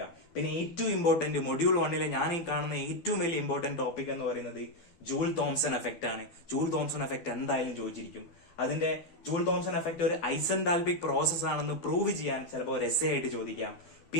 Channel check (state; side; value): late; right; 12 ms